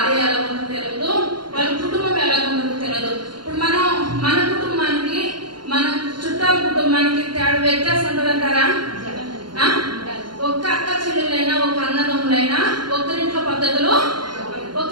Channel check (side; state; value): left; late; 0.71 ms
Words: ఎలా ఉందో తెలియదు, వాళ్ళ కుటుంబం ఎలా ఉందో తెలియదు. ఇప్పుడు మన కుటుంబానికి మన చుట్టాల కుటుంబానికి తేడా వ్యత్యాసం ఉంటుందంటారా? ఒక్క అక్క చెల్లెలైనా ఒక అన్నదమ్ములైనా ఒకరింట్లో పద్ధతులు ఒక